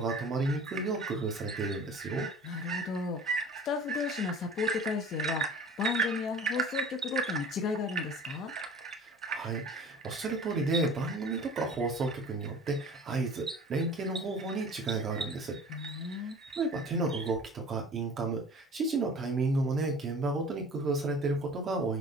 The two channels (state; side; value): normal; both; correlation 0.43